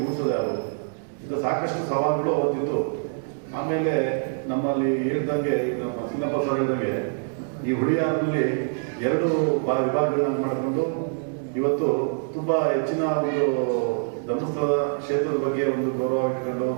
ಮೂಡಿಸೋದು ಯಾರು, ಇದು ಸಾಕಷ್ಟು ಸವಾಲುಗಳು ಅವತ್ತಿತ್ತು. ಆಮೇಲೆ ನಮ್ಮಲ್ಲಿ ಹೇಳ್ದಂಗೆ, ನಮ್ಮ ಸಿನ್ನಪ್ಪ ಸರ್ ಹೇಳ್ದಂಗೆ, ಈ ಹುಳಿಯಾರಲ್ಲಿ 2 ವಿಭಾಗಗಳನ್ನ ಮಾಡಿಕೊಂಡು ಇವತ್ತು ತುಂಬ ಹೆಚ್ಚಿನ ಒಂದು ಧರ್ಮಸ್ಥಳದ ಕ್ಷೇತ್ರದ ಬಗ್ಗೆ ಒಂದು ಗೌರವ ಇಟ್ಕೊಂಡು,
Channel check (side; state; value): left; silent; digital silence